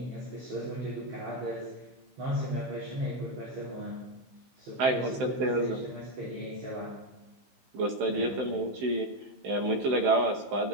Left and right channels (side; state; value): left; late; 15 ms